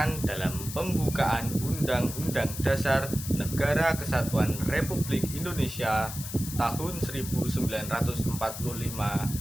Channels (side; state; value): left; noise; hiss, 9 dB below the sound